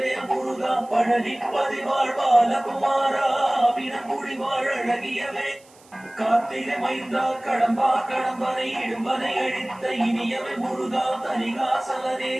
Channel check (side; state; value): right; noise; hiss, 27 dB below the sound